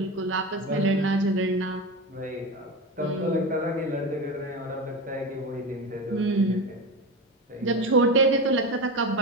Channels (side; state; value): both; normal; correlation 0.22